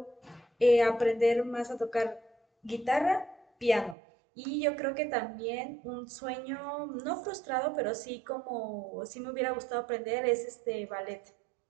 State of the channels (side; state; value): left; drops out; at 4.0 s